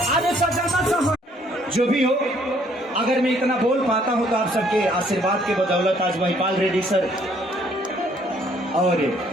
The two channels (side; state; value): both; normal; correlation 0.64